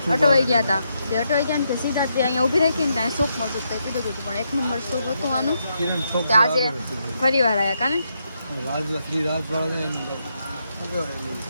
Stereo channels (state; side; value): inverted; both; correlation -0.81